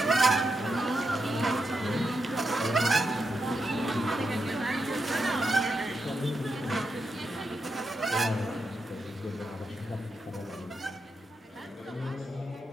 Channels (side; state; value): both; normal; correlation 0.84